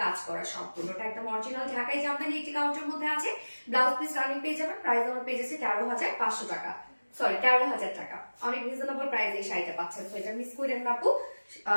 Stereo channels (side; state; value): both; inverted; correlation -1.00